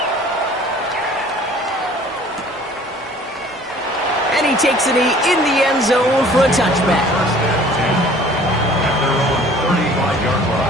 And he takes a knee in the end zone for a touchback.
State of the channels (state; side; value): normal; both; correlation 0.51